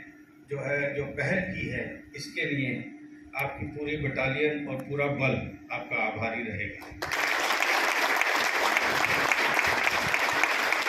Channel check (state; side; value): identical; both; correlation 1.00